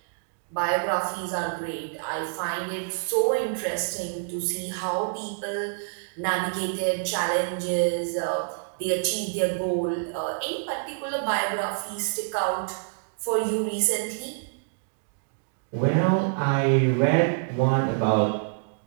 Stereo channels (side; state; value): left; silent; digital silence